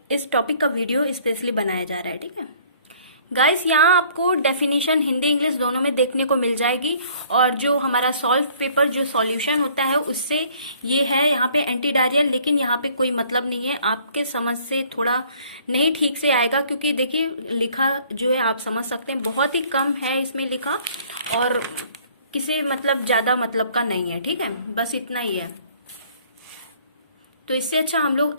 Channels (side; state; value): both; inverted; correlation -0.57